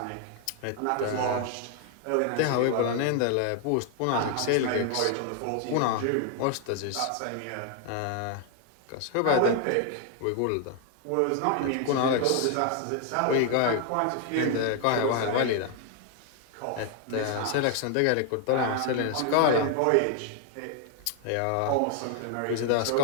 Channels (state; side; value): different; both; correlation 0.00